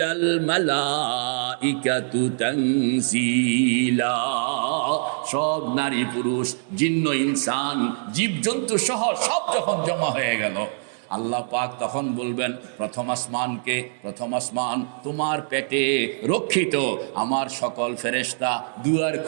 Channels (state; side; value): silent; left; digital silence